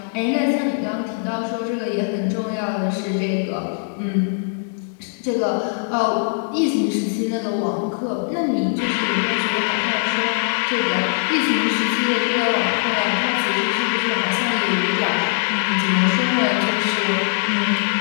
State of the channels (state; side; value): silent; right; digital silence